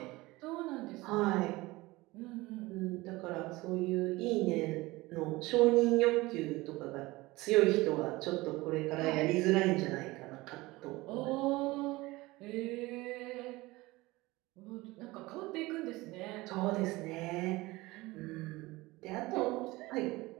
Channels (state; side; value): quieter; left; 20.7 dB